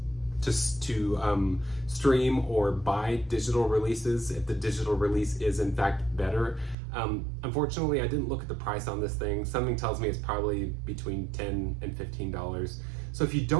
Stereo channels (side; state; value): left; drops out; at 6.8 s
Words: just to stream or buy digital releases if the digital release is in fact better. Unfortunately, I didn't look at the price on this thing. Something tells me it's probably between $10 and $15. So if you